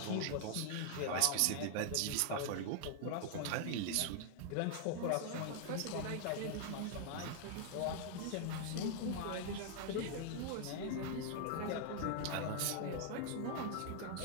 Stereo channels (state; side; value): different; both; correlation 0.00